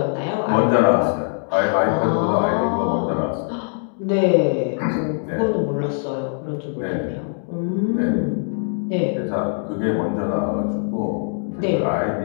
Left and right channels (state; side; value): silent; right; digital silence